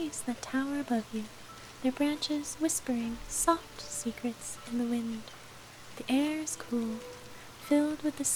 that tower above you, their branches whispering soft secrets in the wind. The air is cool, filled with the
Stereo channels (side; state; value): both; identical; correlation 1.00